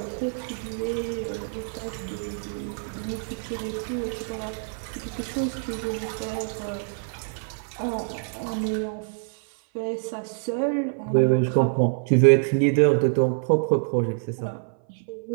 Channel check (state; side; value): silent; left; 57 dB below the other